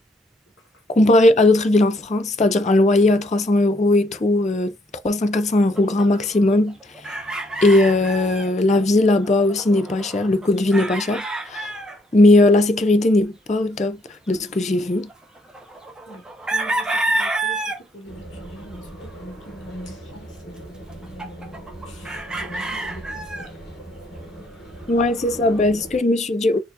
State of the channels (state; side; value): normal; both; correlation 0.69